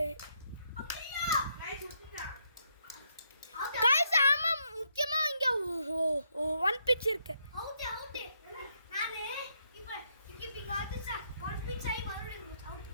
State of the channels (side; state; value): both; inverted; correlation -0.76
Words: गाइस ஆமா முக்கியமா இங்க ஒன் பிட்ச் இருக்கு. அவுட் நானே இப்போ கீப்பிங் ஆடுச்சா ஒன் பிட்ச் ஆயி மறுபடியும் அவுட்.